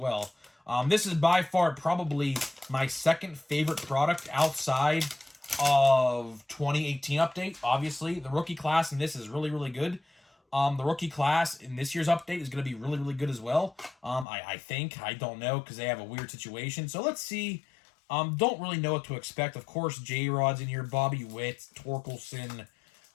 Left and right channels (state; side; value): drops out; right; at 14.2 s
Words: This is by far probably my second favorite product outside of 2018 update. Obviously, the rookie class in this is really, really good. The rookie class in this year's update is going to be really, really good as well. I think. I don't know because they have a weird situation. So let's see. Don't really know what to expect. Of course, J-Rod's in here. Bobby Witt, Torkelson,